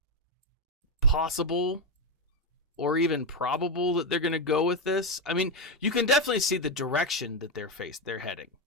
possible or even probable that they're going to go with this. I mean, you can definitely see the direction that they're heading.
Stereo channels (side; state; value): both; normal; correlation 0.08